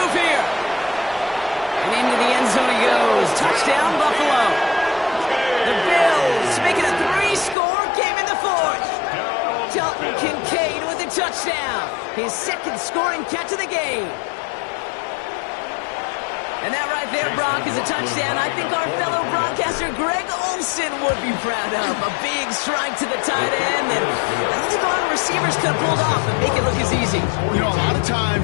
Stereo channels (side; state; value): right; drops out; at 7.6 s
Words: here. And into the end zone he goes. Touchdown, Buffalo. The Bills make it a 3-score game in the fourth. Dalton Kincaid with a touchdown. His second scoring catch of the game. And that right there, Brock, is a touchdown I think our fellow broadcaster Greg Olsen would be proud of. A big strike to the tight end, and I don't think a lot of receivers could have pulled off and make it look as easy. You know, a lot of